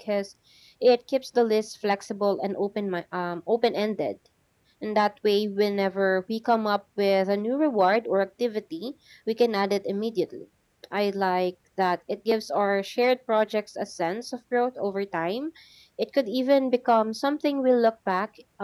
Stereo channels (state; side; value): identical; both; correlation 1.00